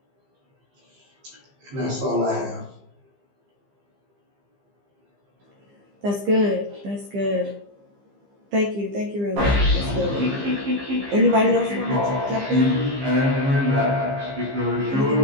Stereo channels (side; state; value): left; late; 15 ms